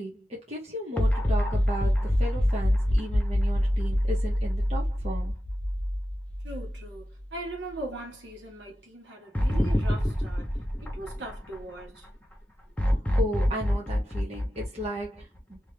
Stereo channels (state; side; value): normal; both; correlation 0.92